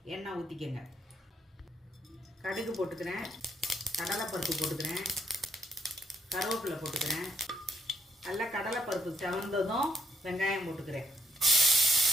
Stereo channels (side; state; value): both; normal; correlation 0.71